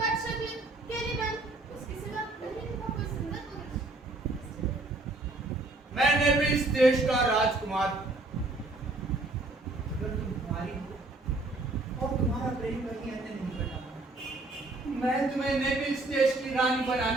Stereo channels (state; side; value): quieter; left; 3.0 dB